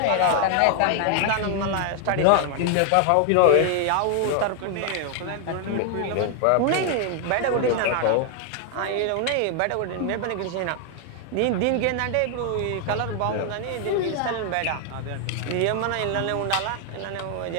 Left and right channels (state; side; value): different; both; correlation 0.00